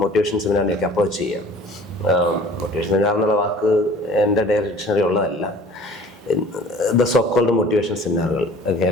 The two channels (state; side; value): normal; both; correlation 0.48